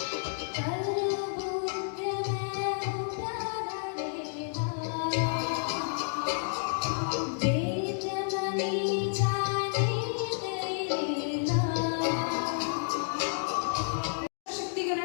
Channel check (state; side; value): silent; right; digital silence